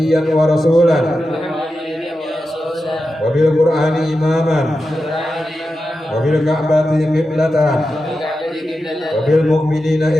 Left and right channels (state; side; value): normal; both; correlation 0.90